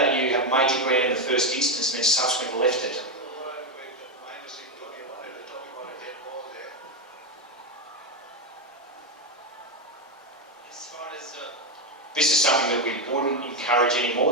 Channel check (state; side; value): normal; both; correlation 0.09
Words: you have made your ground in the first instance and then subsequently left it. As far as This is something that we wouldn't encourage